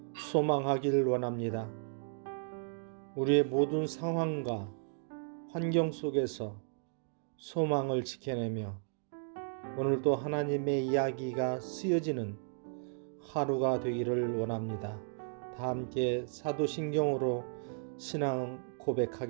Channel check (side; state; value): left; silent; digital silence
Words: 소망하기를 원합니다. 우리의 모든 상황과 환경 속에서 소망을 지켜내며 오늘도 하나님의 이야기가 쓰여지는 하루가 되기를 원합니다. 다 함께 사도신경으로 신앙